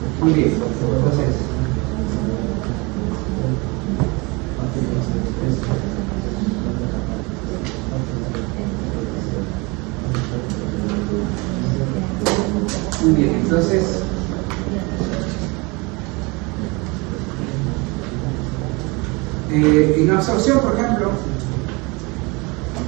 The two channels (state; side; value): quieter; left; 26.9 dB